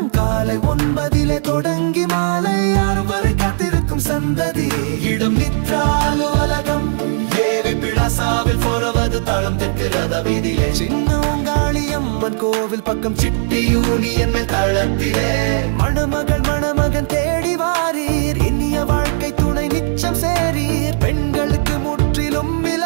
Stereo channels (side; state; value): left; silent; 56 dB below the other